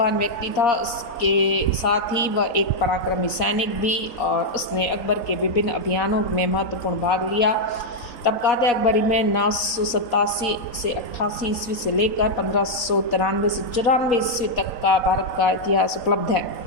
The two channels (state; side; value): late; right; 4.2 ms